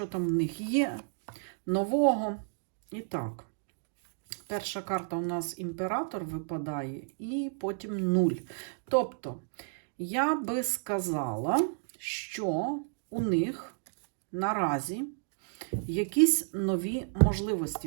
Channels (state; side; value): silent; left; digital silence